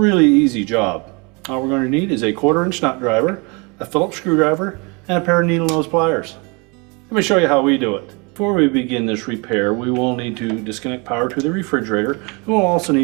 easy job. All we're going to need is a 1/4" nut driver, a Phillips screwdriver, and a pair of needle nose pliers. Let me show you how we do it. Before we begin this repair, we will need to disconnect power to the refrigerator, and we'll also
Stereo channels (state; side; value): quieter; left; 29.8 dB